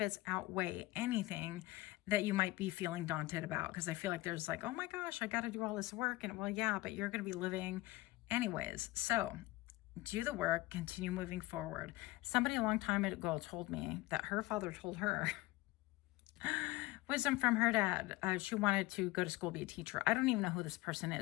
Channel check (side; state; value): right; quieter; 19.7 dB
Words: outweigh anything that you might be feeling daunted about. Because I feel like there's like, oh my gosh, I got to do all this work. And well, yeah, but you're going to be living anyways. So do the work, continue moving forward. Somebody a long time ago told me that her father told her, wisdom from her dad, she wanted to go to school, be a teacher. I don't even know who this person